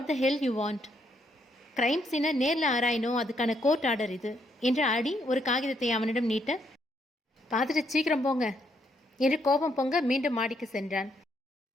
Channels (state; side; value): normal; both; correlation 0.74